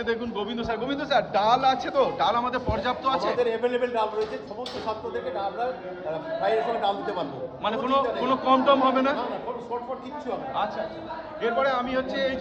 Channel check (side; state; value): both; identical; correlation 1.00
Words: দেখুন গোবিন্দ স্যার ডাল আছে তো? ডাল আমাদের পর্যাপ্ত আছে? আমাদের অ্যাভেলেবেল ডাল রয়েছে, সমস্ত ছাত্রদেরকে আমরা ফ্রাইয়ের সঙ্গে ডাল দিতে পারবো। মানে কোনো কম টম হবে না? না না, কোনো শর্টফট কিচ্ছু হবে না। আচ্ছা, এরপরে আমি হচ্ছে এই